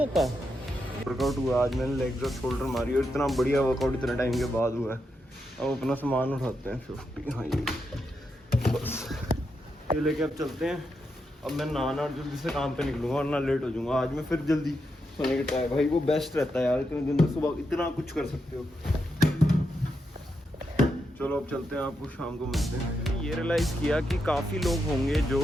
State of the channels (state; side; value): normal; both; correlation 0.84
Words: वर्कआउट हुआ आज, मैंने लेग्स और शोल्डर मारी, और इतना बढ़िया वर्कआउट इतने टाइम के बाद हुआ है। अब अपना सामान उठाते हैं 50। हाँ ये बस ये लेके अब चलते हैं। अब मैं नहाना और जल्दी से काम पे निकलूंगा, और ना लेट हो जाऊंगा। आज मैं फिर जल्दी सोने का ट्राई, भाई वो बेस्ट रहता है यार, इतने दिन में सुबह इतना कुछ कर सकते हो। चलो अब चलते हैं, आपको शाम को मिलते हैं। ये रियलाइज़ किया कि काफ़ी लोग होंगे जो